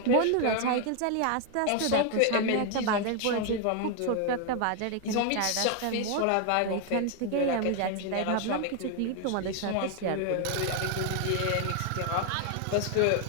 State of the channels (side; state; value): both; different; correlation 0.00